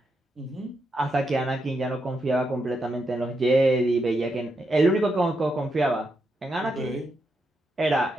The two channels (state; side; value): normal; both; correlation 0.83